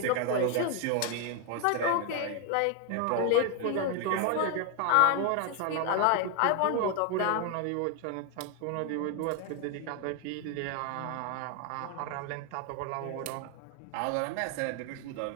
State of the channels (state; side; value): different; both; correlation 0.01